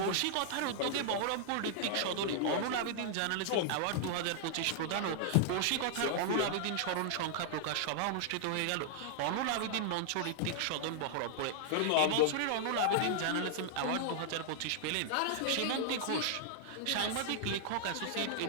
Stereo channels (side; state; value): both; different; correlation -0.01